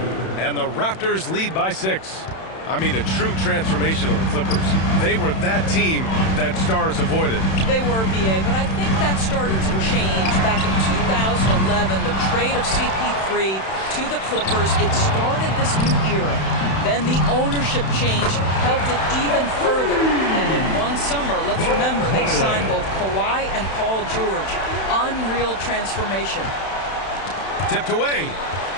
And the Raptors lead by 6. I mean, a true transformation of the Clippers. They were that team that stars avoided. They were, B.A., but I think that started to change back in 2011. The trade of CP3 to the Clippers, it started this new era. Then the ownership change helped it even further. And in one summer, let's remember, they signed both Kawhi and Paul George. Unreal transformation. Tipped away.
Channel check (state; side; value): late; right; 31 ms